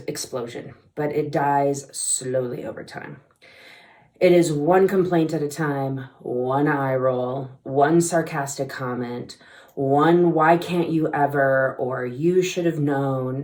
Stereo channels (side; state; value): both; identical; correlation 1.00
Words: explosion, but it dies slowly over time. It is one complaint at a time, one eye roll, one sarcastic comment, one why can't you ever, or you should have